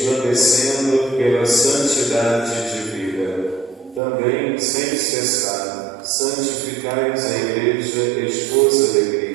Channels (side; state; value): left; drops out; at 4.0 s